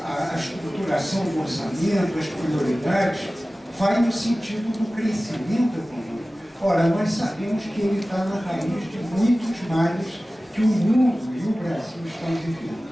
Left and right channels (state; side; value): normal; both; correlation 0.97